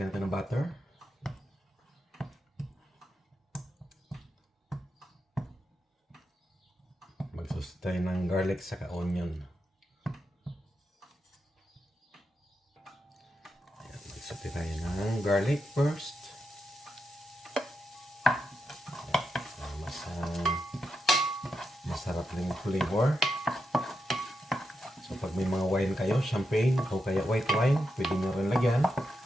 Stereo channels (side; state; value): both; normal; correlation 0.85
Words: natin ng butter. tayo ng garlic saka onion. Ayan, magsaute tayo ng garlic first. Ayan, masarap lang yung flavor. So pag may mga wine kayo, champagne o kaya white wine, pwede nyo rin lagyan.